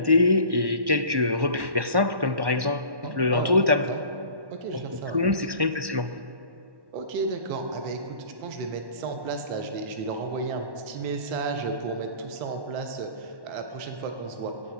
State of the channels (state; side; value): late; left; 1.1 ms